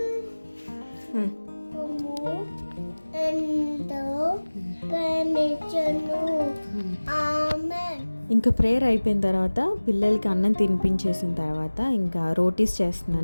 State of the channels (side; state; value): both; inverted; correlation -1.00